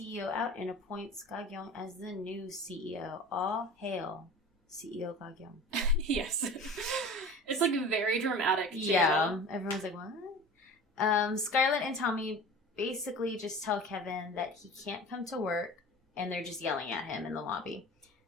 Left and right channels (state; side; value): normal; both; correlation 0.38